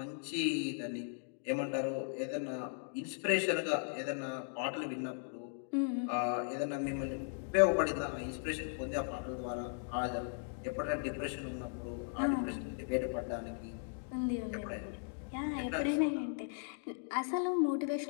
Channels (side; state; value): right; silent; digital silence